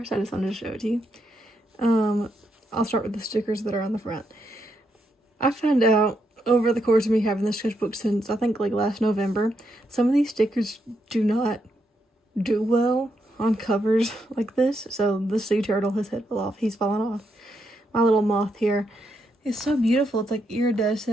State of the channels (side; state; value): both; normal; correlation 0.80